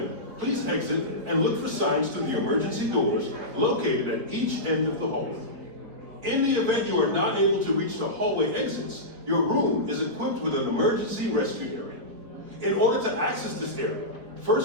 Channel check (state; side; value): late; left; 4.2 ms